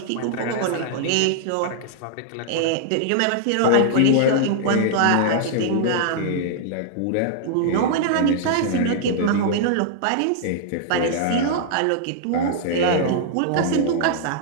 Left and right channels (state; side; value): different; both; correlation -0.01